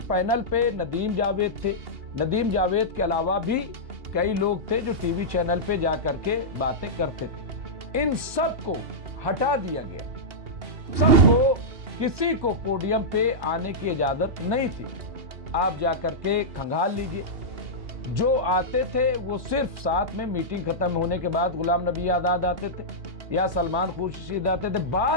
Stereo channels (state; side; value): late; left; 2.8 ms